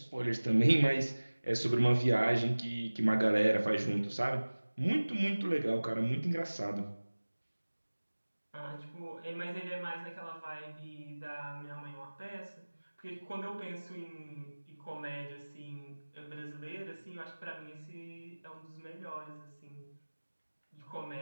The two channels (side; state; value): both; inverted; correlation -1.00